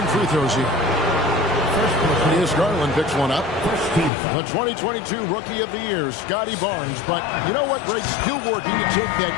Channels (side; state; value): right; drops out; at 4.1 s